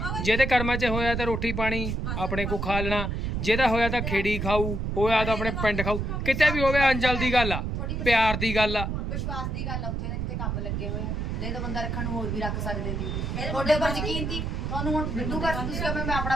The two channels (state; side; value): noise; right; rumble, 2 dB below the sound